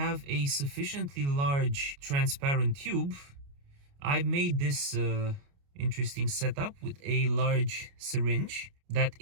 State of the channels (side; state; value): left; late; 29 ms